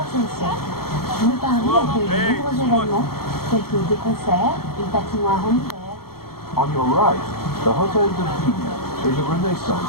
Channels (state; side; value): late; right; 0.94 ms